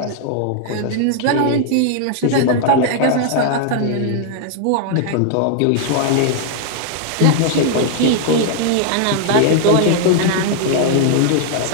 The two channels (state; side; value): different; both; correlation 0.00